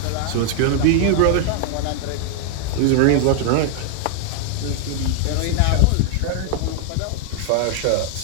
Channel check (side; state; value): both; different; correlation 0.00